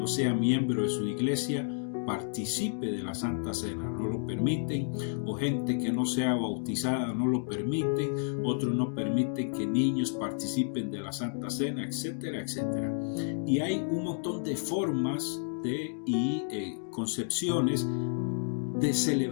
sea miembro de su iglesia participe de la Santa Cena, no lo permiten, o gente que no sea bautizada no lo permiten, otros no permiten que niños participen de la Santa Cena, etcétera, etcétera. Y hay un montón de formas y concepciones de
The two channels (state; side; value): silent; right; digital silence